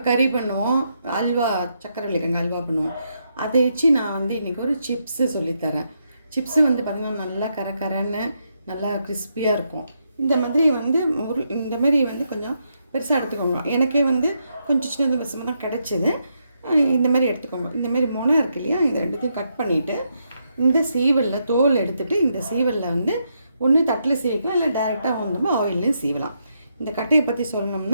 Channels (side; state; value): both; inverted; correlation -0.80